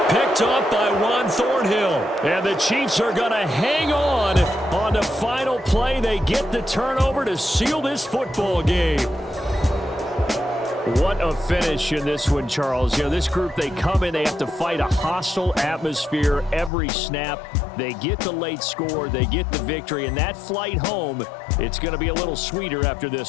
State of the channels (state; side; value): drops out; right; at 16.7 s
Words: Picked off by Juan Thornhill. And the Chiefs are going to hang on the final play. They get the turnover to seal this football game. What a finish in this one, Charles. You know, this group, they come in, they have to fight a hostile atmosphere every snap. They get the late score, they get the victory, and that flight home, it's going to be a little sweeter after